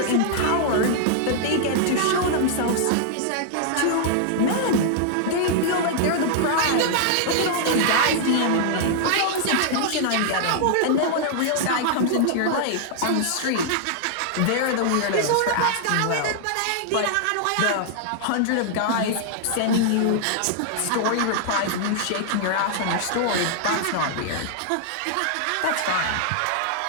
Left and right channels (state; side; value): different; both; correlation -0.01